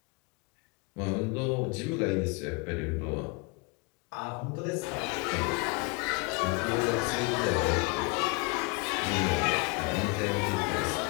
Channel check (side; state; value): right; quieter; 29.8 dB